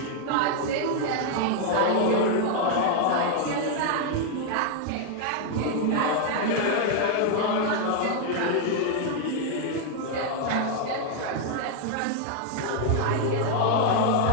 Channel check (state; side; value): different; both; correlation 0.00